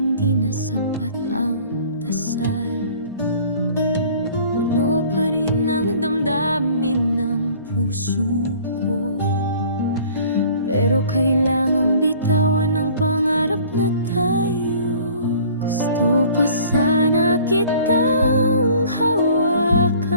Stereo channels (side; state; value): both; inverted; correlation -0.50